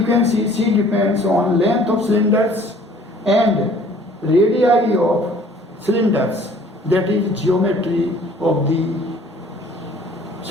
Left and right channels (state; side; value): normal; both; correlation 0.53